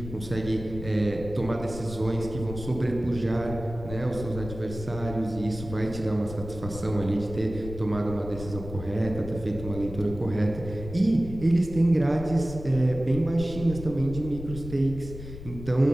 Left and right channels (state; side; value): noise; left; rumble, 11 dB below the sound